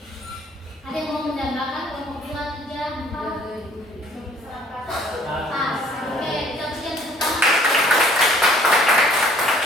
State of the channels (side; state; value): both; normal; correlation 0.57